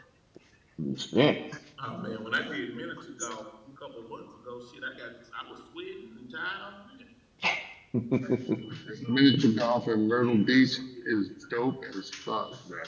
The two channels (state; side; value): identical; both; correlation 1.00